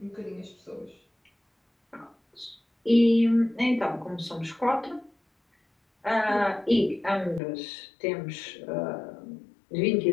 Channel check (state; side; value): drops out; right; at 7.4 s